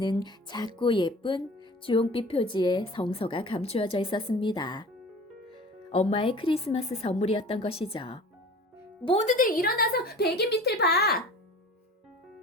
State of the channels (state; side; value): normal; both; correlation 0.41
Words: 작고 예쁜 주홍빛 표지의 성서가 감추어져 있었습니다. 엄마의 크리스마스 선물이었던 것이죠. 모두들 일어나서 베개 밑을 봐!